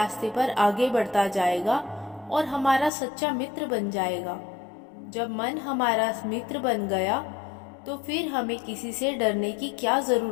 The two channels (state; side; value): drops out; right; at 2.9 s